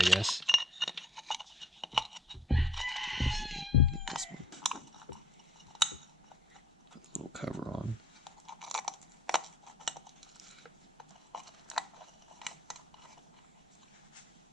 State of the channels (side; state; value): both; normal; correlation 0.60